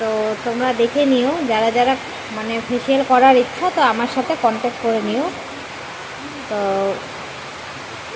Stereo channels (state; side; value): identical; both; correlation 1.00